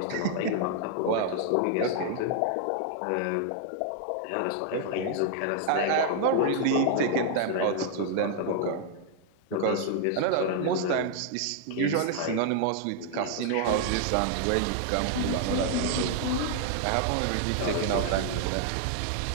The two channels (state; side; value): different; both; correlation 0.00